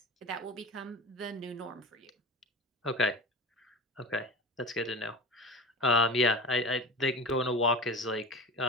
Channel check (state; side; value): normal; both; correlation 0.31